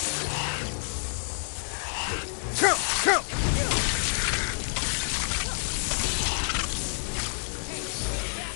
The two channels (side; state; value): right; silent; digital silence